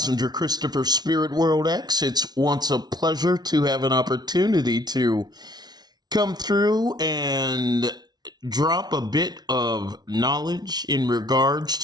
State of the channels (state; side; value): late; left; 0.19 ms